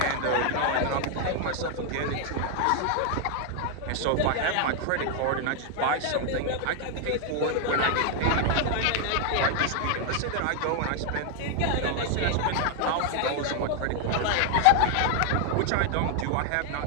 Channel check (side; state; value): both; different; correlation 0.00